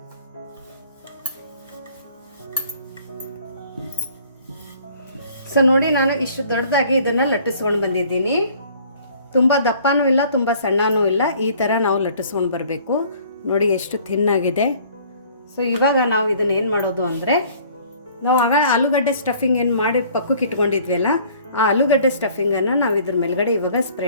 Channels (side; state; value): both; inverted; correlation -0.54